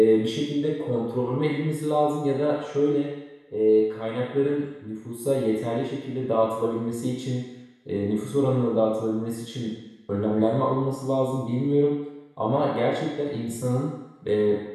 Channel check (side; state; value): both; identical; correlation 1.00